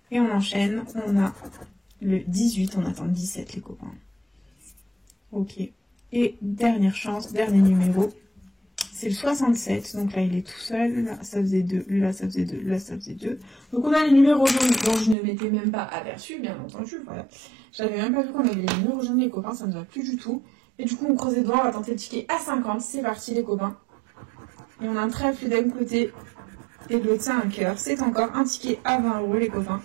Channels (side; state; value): left; drops out; at 15.2 s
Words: on enchaîne, on a le 18, on attend le 17 les copains. Ok. Et dernière chance, dernier numéro, c'est le 67. Donc là, il est tout seul. Là, ça faisait 2. Là, ça faisait 2. Là, ça faisait 2. Donc on a les numéros jaunes dont je ne m'étais même pas aperçu, bien entendu. Voilà. J'avais même pas vu qu'on avait les numéros jaunes, les copains. Ça ne va plus du tout. Et du coup, on creuse les doigts. On va tenter le ticket à 50. C'est parti, les copains. Et on a un trèfle d'un côté. Et de l'autre, c'est un cœur. C'est encore un ticket à 20 euros, les copains.